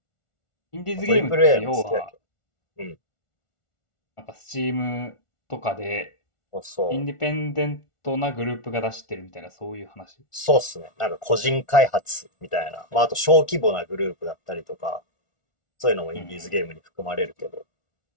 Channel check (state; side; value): late; right; 1.4 ms